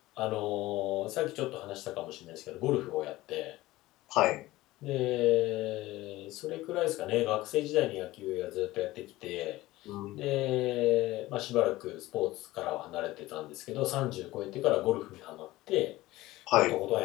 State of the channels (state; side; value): quieter; right; 17.9 dB